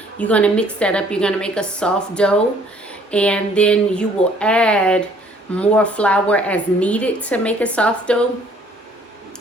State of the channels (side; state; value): both; normal; correlation 0.59